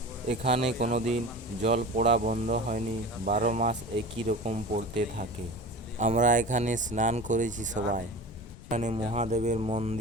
এখানে কোনোদিন জল পড়া বন্ধ হয়নি, 12 মাস একই রকম পড়তে থাকে। আমরা এখানে স্নান করেছি সবাই। এখানে মহাদেবের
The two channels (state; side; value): noise; left; rumble, 18 dB below the sound